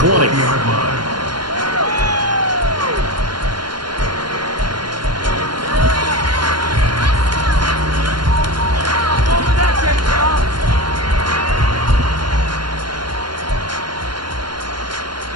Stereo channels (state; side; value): late; left; 0.71 ms